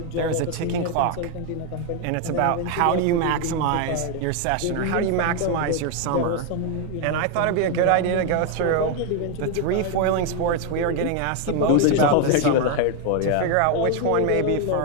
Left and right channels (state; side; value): different; both; correlation 0.01